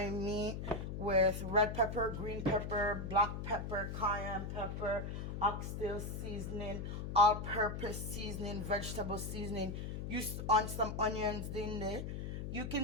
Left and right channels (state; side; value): noise; left; hum, 5 dB below the sound